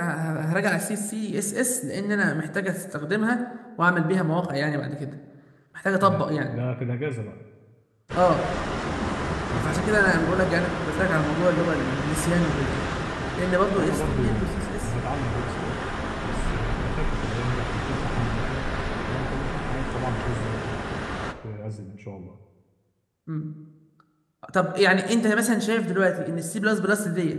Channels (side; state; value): both; identical; correlation 1.00